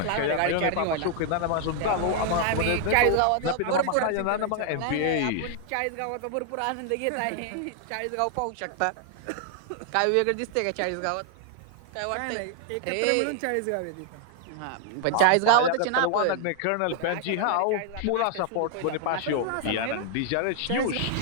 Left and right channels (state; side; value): different; both; correlation 0.00